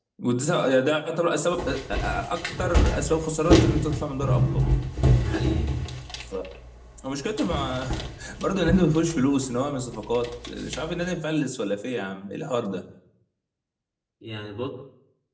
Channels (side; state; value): both; identical; correlation 1.00